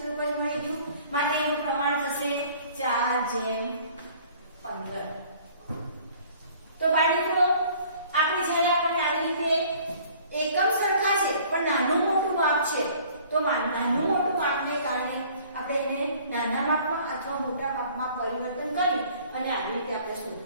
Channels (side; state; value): both; inverted; correlation -0.53